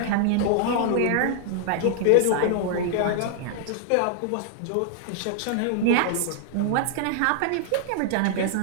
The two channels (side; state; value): both; different; correlation 0.00